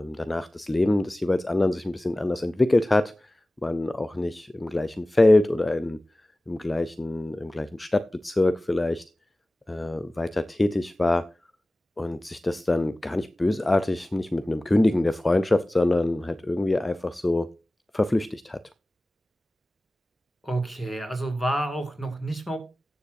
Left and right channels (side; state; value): both; normal; correlation 0.97